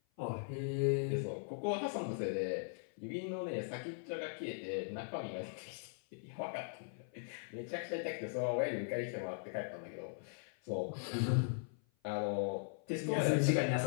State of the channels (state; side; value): silent; right; 51 dB below the other